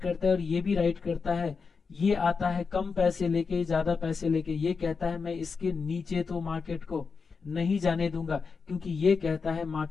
है और ये भी राइट करता है, ये आता है कम पैसे लेके ज्यादा पैसे लेके, ये कहता है मैं इसके नीचे तो मार्केट को नहीं जाने दूंगा, क्योंकि ये कहता है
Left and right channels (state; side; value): quieter; right; 5.1 dB